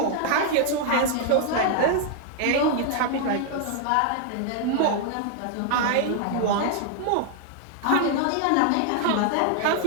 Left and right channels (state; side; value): different; both; correlation 0.00